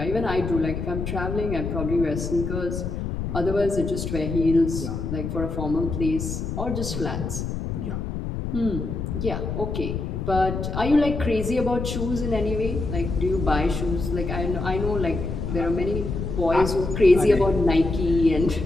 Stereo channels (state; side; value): noise; left; rumble, 4 dB below the sound